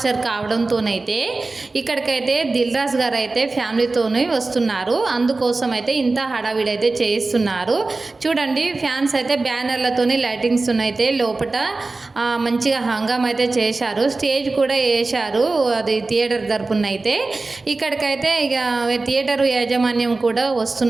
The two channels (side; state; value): left; quieter; 3.5 dB